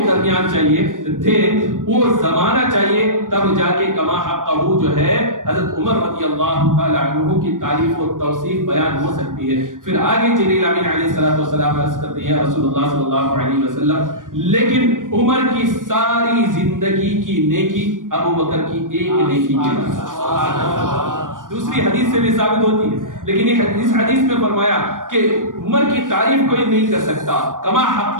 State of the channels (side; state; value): left; late; 0.88 ms